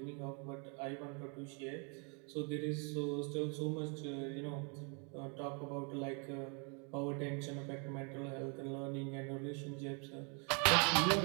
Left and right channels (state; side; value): quieter; left; 36.5 dB